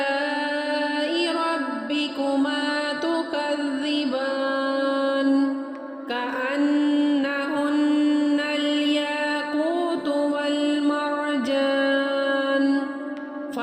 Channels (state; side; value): identical; both; correlation 1.00